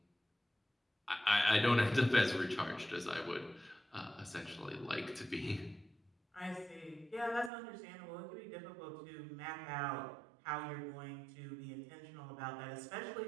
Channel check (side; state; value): left; drops out; at 7.5 s